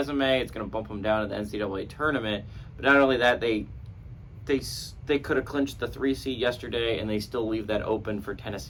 It's going to bump them down in the NCAA tournament. But not only that, they could have clinched the 3 seed yesterday, and they still leave that open for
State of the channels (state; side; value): identical; both; correlation 1.00